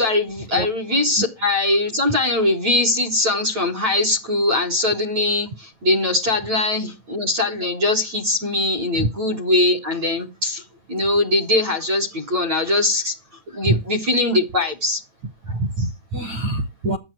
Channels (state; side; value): late; left; 9.1 ms